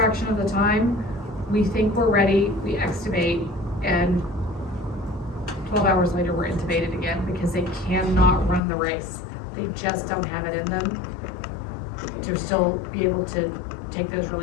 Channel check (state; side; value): drops out; right; at 8.6 s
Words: of the time, we think we're ready, we extubate, and 12 hours later, we're intubated again because they cannot run the race. They just don't have it in them to still be able to take those